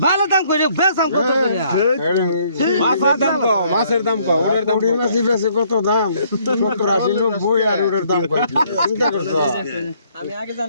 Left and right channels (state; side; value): inverted; both; correlation -0.65